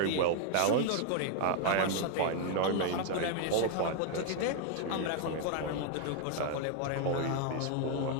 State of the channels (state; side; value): different; both; correlation 0.00